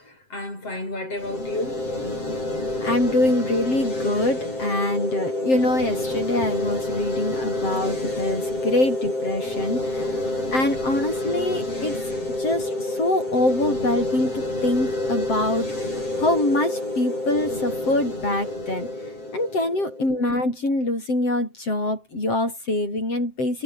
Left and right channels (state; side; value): late; right; 7.6 ms